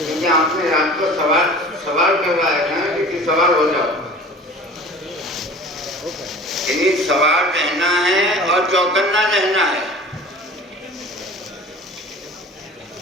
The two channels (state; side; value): normal; both; correlation 0.42